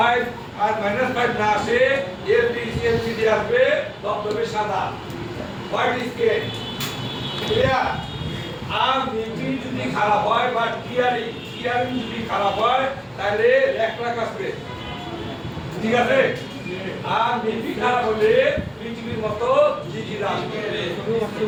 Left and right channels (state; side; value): identical; both; correlation 1.00